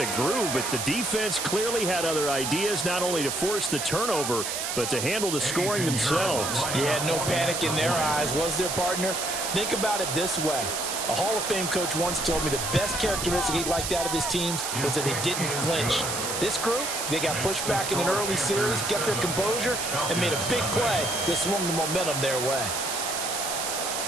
groove, but the defense clearly had other ideas, not only to force the turnover, but to handle the scoring themselves. Yeah, no panic in their eyes, was their partner? Think about it this way. A Hall of Fame coach once told me the best characteristic he liked out of his teams was that they didn't flinch. This group, they got pushed back in an early series, kept their composure, and made a big play that swung the momentum their way.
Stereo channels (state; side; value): noise; right; hiss, 3 dB below the sound